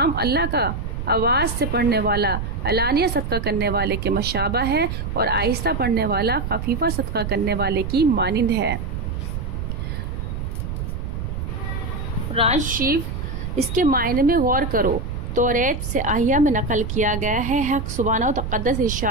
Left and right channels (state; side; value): noise; right; rumble, 4 dB below the sound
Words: کا آواز سے پڑھنے والا علانیہ صدقہ کرنے والے کے مشابہ ہے، اور آہستہ پڑھنے والا خفیفہ صدقہ کرنے والے کی مانند ہے۔ قرآن شریف اس کے معنی میں غور کرو۔ توریت سے احیا میں نقل کیا گیا ہے، حق سبحانہ و تقدس